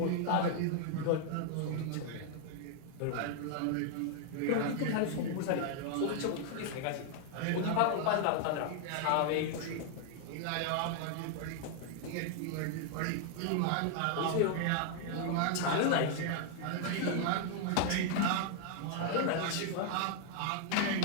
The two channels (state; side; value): different; both; correlation 0.00